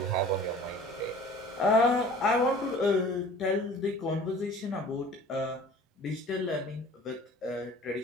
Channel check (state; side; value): normal; both; correlation 0.46